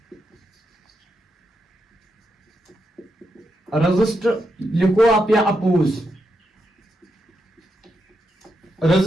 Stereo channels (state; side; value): normal; both; correlation 0.83